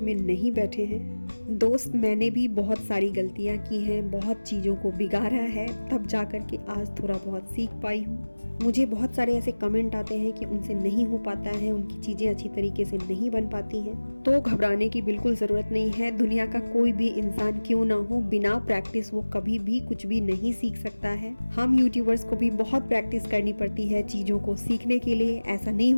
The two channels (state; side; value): inverted; both; correlation -1.00